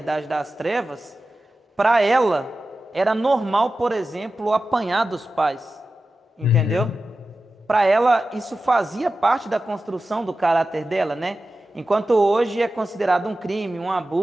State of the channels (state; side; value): normal; both; correlation 0.93